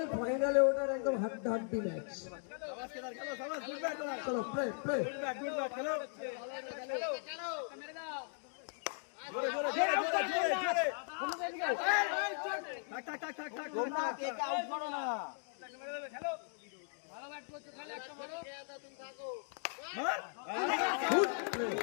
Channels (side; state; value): right; silent; 52 dB below the other